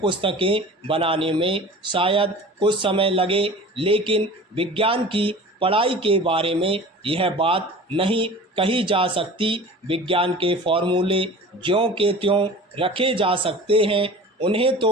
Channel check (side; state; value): both; normal; correlation 0.40